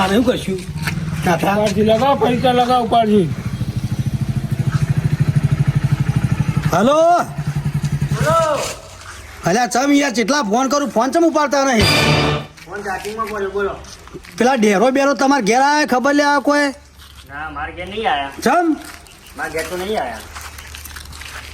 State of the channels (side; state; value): both; identical; correlation 1.00